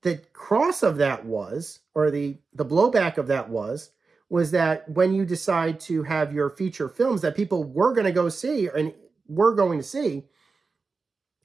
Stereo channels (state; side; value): quieter; left; 4.4 dB